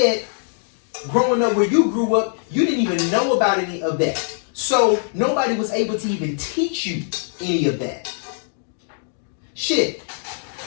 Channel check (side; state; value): right; silent; digital silence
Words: growing up where you grew up, you didn't even know about any of that. So nobody was able to even teach you any of that. Shit.